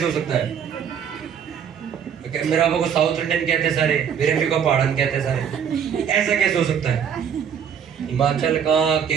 हो सकता है? मेरे पापा को साउथ इंडियन कहते हैं सारे, मेरे अम्मी को पहाड़न कहते हैं सारे, ऐसा कैसे हो सकता है? हिमाचल का,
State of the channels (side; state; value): left; quieter; 7.9 dB